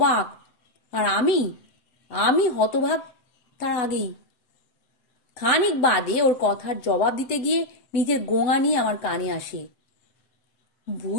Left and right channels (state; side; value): late; right; 7.8 ms